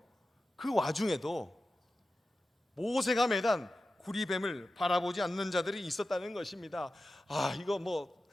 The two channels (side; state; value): both; normal; correlation 0.93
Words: 그 와중에도 모세가 매단 구리뱀을 바라보지 않는 자들이 있었다는 것입니다. 이거